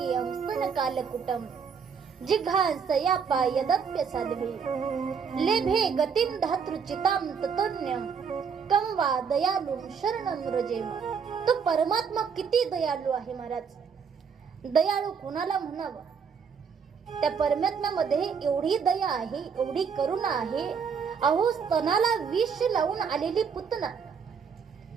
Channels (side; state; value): left; quieter; 6.3 dB